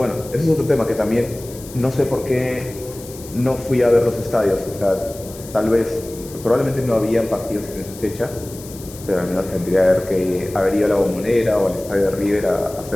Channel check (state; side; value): noise; left; hiss, 17 dB below the sound